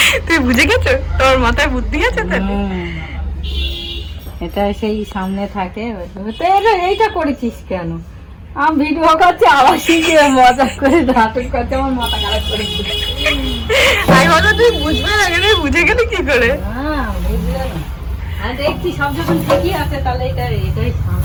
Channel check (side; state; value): both; identical; correlation 1.00